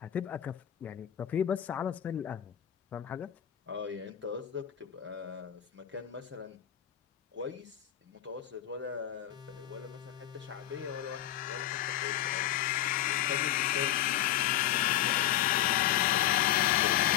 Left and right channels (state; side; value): quieter; right; 12.1 dB